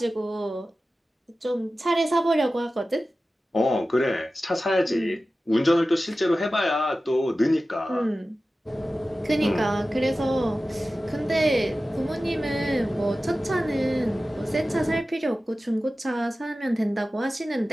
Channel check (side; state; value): both; normal; correlation 0.95